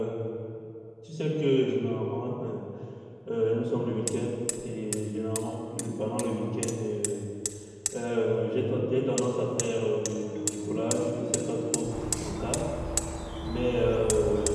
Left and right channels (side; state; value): both; identical; correlation 1.00